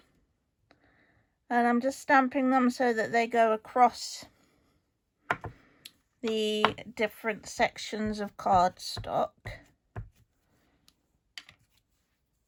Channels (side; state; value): both; identical; correlation 1.00